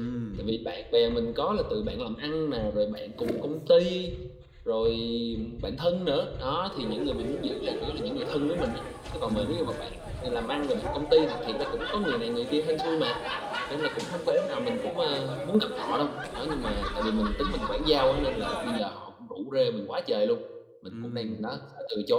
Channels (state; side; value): identical; both; correlation 1.00